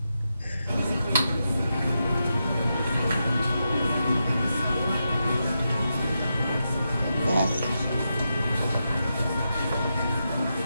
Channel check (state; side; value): inverted; both; correlation -0.87